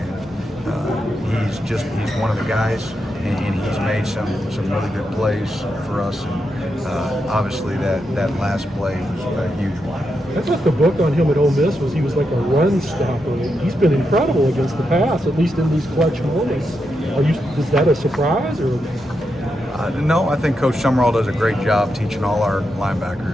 he's one of the guys, and he's made some really good plays for us. And obviously, that last play was a huge one. I thought the book on him at Ole Miss was he was like a run stopper. He's been incredible against the pass, at least in these clutch moments. Is that a surprise or? No, I think Coach Summerall does a great job teaching all our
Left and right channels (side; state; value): both; normal; correlation 0.85